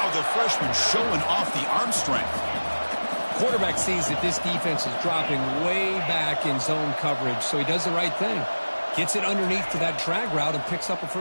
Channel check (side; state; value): both; inverted; correlation -1.00